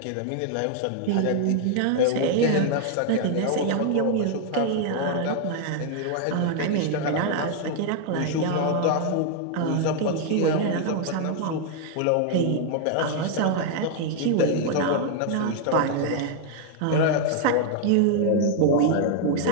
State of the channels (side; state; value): both; different; correlation 0.00